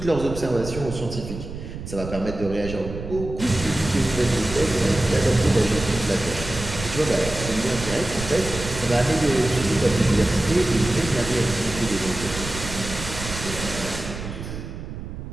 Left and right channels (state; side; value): noise; right; rumble, 9 dB below the sound